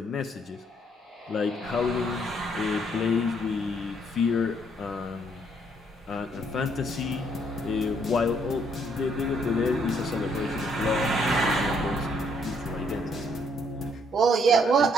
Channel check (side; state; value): both; normal; correlation 0.68